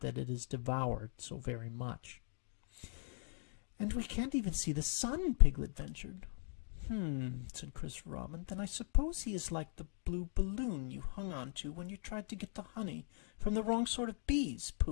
it is devoured so very much." "And we can't even see the sun," Piglet ventured. Said Christopher Robin. "Then I suppose he is like the blue balloon you hung on to when you tried to get the honey from the wrong sort of bees,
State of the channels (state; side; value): silent; right; 51 dB below the other